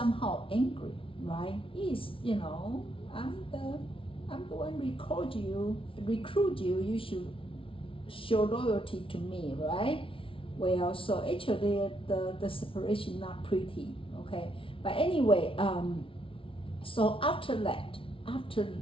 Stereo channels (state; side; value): late; right; 0.25 ms